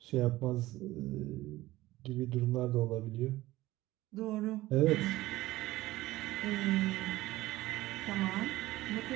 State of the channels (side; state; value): left; quieter; 17.3 dB